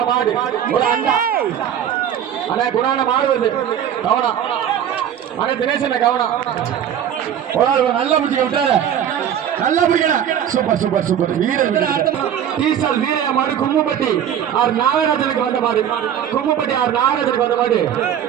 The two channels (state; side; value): quieter; left; 9.5 dB